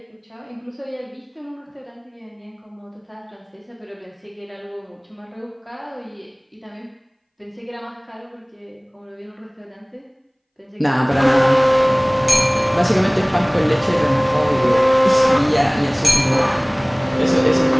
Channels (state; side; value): identical; both; correlation 1.00